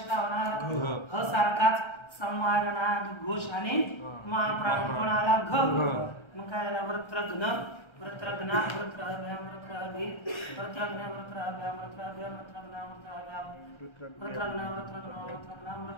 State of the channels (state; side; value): late; right; 1.3 ms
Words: का होणार ह सारखाच संवारणाद घोष आणि महाप्राण कोणाला घ. मग काय झाला वृत्रघ्न वृत्रघ्ना वृत्रहभ्याम वृत्रहभि वृत्रघ्न वृत्रहभ्याम वृत्रहभ्याम वृत्रघ्ना वृत्रघ्ना